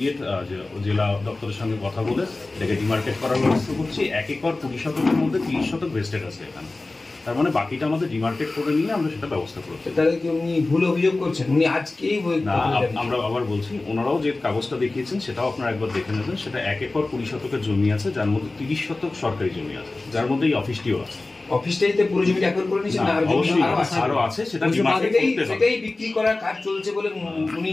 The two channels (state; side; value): quieter; right; 3.2 dB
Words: জেলা দপ্তরের সঙ্গে কথা বলে এটাকে ডিমার্কেট করার ব্যবস্থা করছি। 1 একর 20 শতকের মধ্যে 30 শতক ভেস্টেড আছে এখানে, তার মানে বাকিটা আমাদের ডিমার্কেট করে নিয়ে আমরা সেটা ব্যবস্থা করছি। তাহলে কি উনি ভুল অভিযোগ করছেন? উনি আজকেই না, আমরা আবার বলছি, ওনারাও যে কাগজটা দেখিয়েছেন সেটাও আপনারা একবার দেখে নেবেন। সেটা 1 একর 20 শতকের জমি আছে, যার মধ্যে 30 শতক সরকারি জমি আছে, যার মধ্যে এই অফিসটিও আছে। অফিসটাইতে পুরো জমিটা একর করে নিয়েছেন না? অবশ্যই আরো আছে, সেটা ডিমার্কেট করতে হবে। সেটাই বিক্রি করার কাজ চলছে বলে উনি